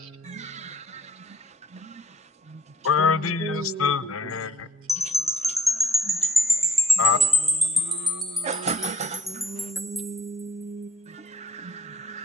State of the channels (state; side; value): normal; both; correlation 0.60